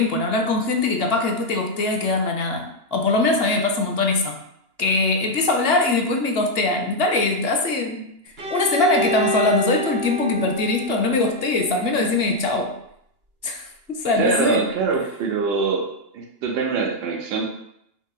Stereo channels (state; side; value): late; left; 2.9 ms